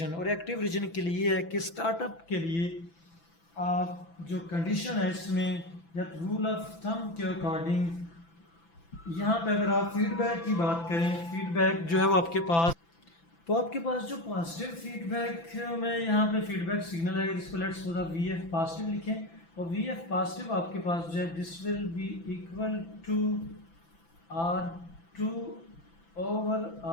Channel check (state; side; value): late; right; 6.0 ms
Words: और एक्टिव रीजन के लिए है कि स्टार्टअप के लिए आप जो कंडीशन है इसमें या रूल ऑफ थंब के अकॉर्डिंग यहाँ पे अगर आप फीडबैक की बात करें, फीडबैक जो है वो आपके पास जो पॉजिटिव फीडबैक में यहाँ पे फीडबैक सिग्नल है जिसको let's suppose V F positive लिखें और वी एफ पॉजिटिव आपके पास जो है this will be equal to R2 over